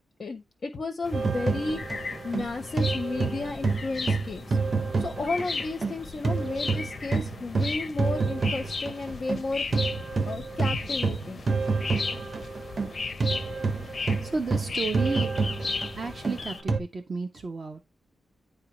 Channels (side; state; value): both; normal; correlation 0.88